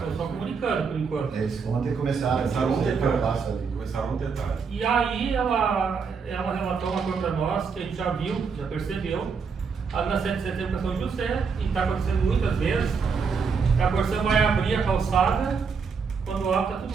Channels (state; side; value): quieter; left; 5.5 dB